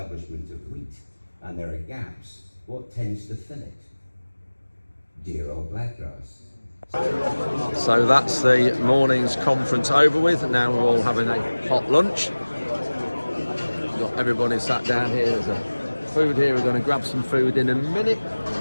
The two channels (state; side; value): inverted; both; correlation -1.00